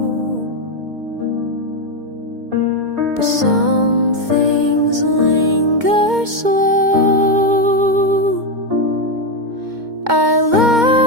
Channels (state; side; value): late; left; 2.2 ms